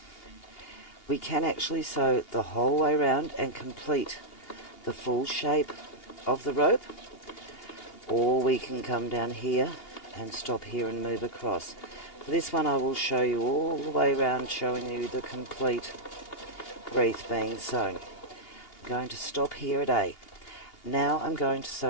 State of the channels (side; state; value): right; late; 2.8 ms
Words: we can actually sew the whole way around and complete the full shape of the rope, or we can come down here and stop here and move across. For this one I will show you all the way around, showing you the complete wreath being sewn. I'm going to stop here at A. Now I'm going to